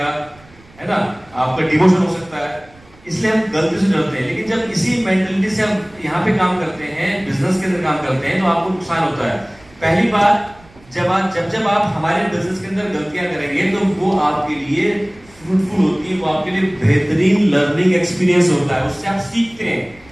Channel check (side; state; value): right; noise; rumble, 26 dB below the sound